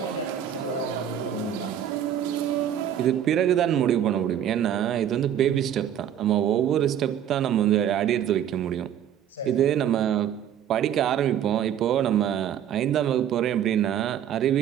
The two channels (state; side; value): quieter; left; 10.0 dB